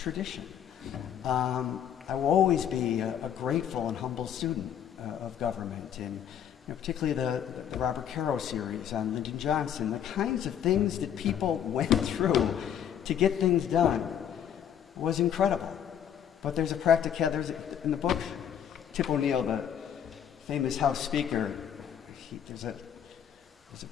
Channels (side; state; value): right; quieter; 9.3 dB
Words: I will always be a grateful and humble student of government, and you know, particularly the Robert Caro series on Lyndon Johnson, the kinds of things that people went through to get things done was incredible. But there's a in the book, Tip O'Neill, the famous House Speaker, there's a